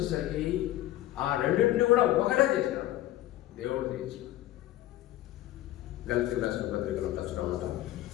ఆ రెండింటిని కూడా ఒకటే చేసినాడు, దేవుడు చేసినాడు. గలతీయులకు రాసిన పత్రికలో కష్టం అంట.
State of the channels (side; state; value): right; quieter; 14.7 dB